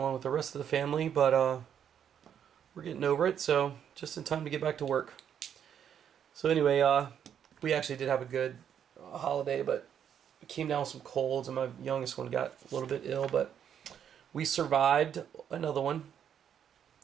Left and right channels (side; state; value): left; quieter; 8.8 dB